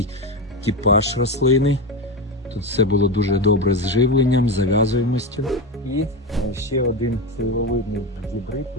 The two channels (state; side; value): normal; both; correlation 0.17